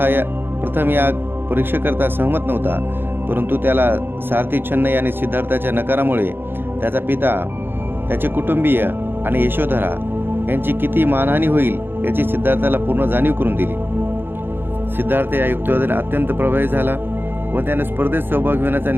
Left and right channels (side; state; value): left; late; 0.10 ms